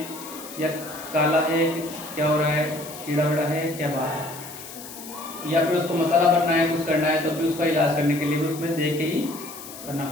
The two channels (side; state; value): left; noise; hiss, 14 dB below the sound